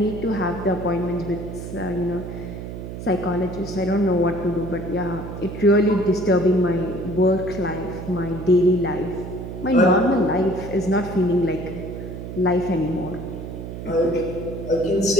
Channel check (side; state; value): right; noise; hum, 9 dB below the sound